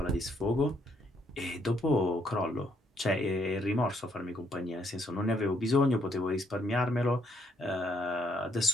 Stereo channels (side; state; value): both; normal; correlation 0.72